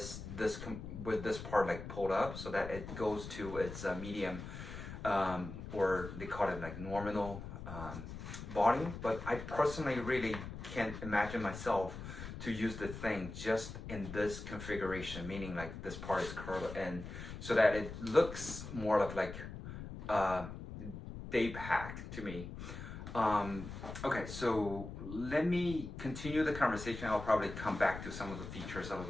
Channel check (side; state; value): left; noise; rumble, 9 dB below the sound